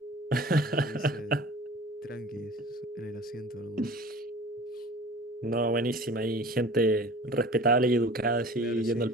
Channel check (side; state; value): both; normal; correlation 0.42